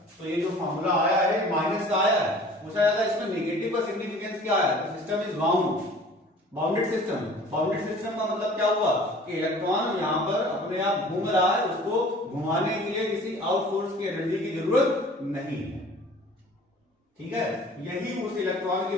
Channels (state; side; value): normal; both; correlation 0.48